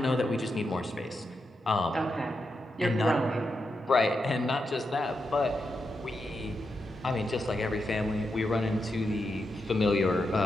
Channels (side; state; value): both; normal; correlation 0.85